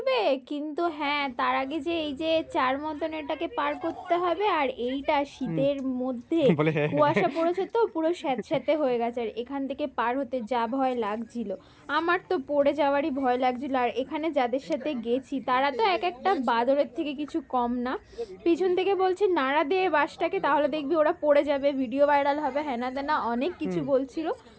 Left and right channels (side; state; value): both; identical; correlation 1.00